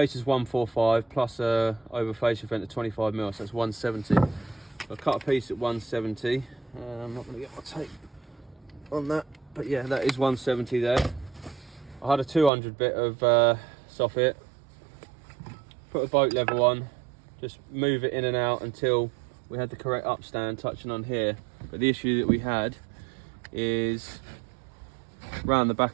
is 145 plus a over fascia vent of 25mm, so that's 170. So I cut a piece at 170. I'm not going to get my tape on that, but yeah, that is 170 there. I had a 200 bit of soffit, put a boat level on, just move it in and out until we had the correct upstand touching on here. But the issue that we had is around the back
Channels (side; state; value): left; drops out; at 12.5 s